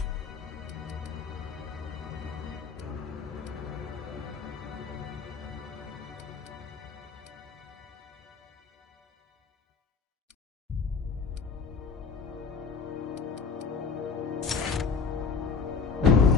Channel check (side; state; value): right; quieter; 5.2 dB